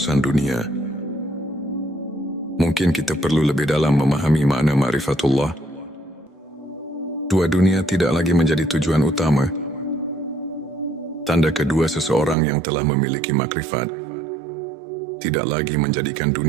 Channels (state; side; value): drops out; left; at 12.4 s